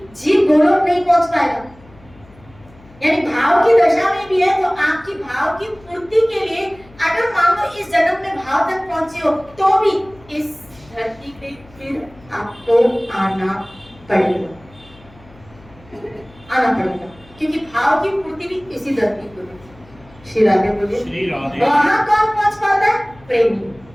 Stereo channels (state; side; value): noise; left; hum, 25 dB below the sound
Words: जीव गोलोक नहीं पहुंच पाएगा। यानी भाव की दशा में भी है तो आपकी भाव की पूर्ति के लिए अगर मान लो इस जन्म में भाव तक पहुंचे हो तो भी इस धरती पे फिर आपको आना पड़ेगा, क्योंकि भाव की पूर्ति भी इसी धरती को है। श्री राधे बोले। वहां कौन पहुंच पाता है? प्रेमी।